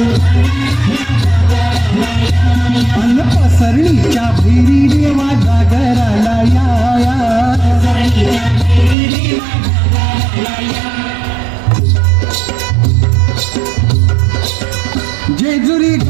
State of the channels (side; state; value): left; drops out; at 9.0 s